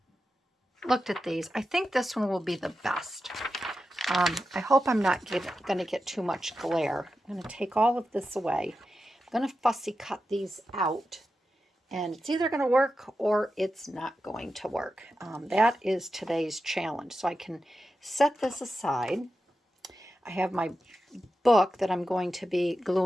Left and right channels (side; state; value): both; normal; correlation 0.90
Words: these. I think this one will be the best. I hope I'm not going to get too much glare. I'm going to take all of this away. I'm going to fussy cut these out. And it's either going to work or it's not going to work. That is today's challenge. So I can set this aside. I have my book that I'm going to be